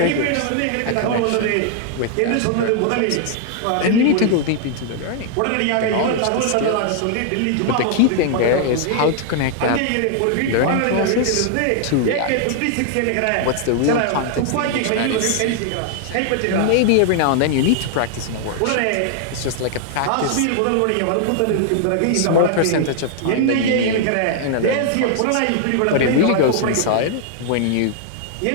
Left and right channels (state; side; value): different; both; correlation 0.00